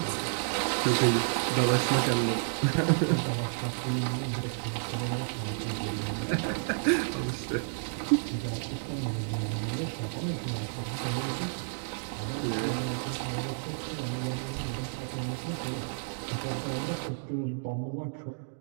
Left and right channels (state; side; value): silent; left; digital silence